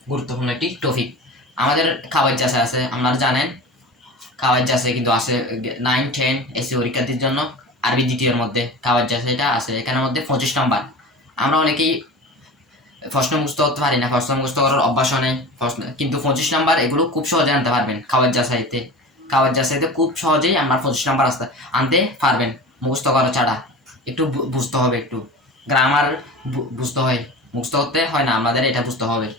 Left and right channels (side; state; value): both; normal; correlation 0.34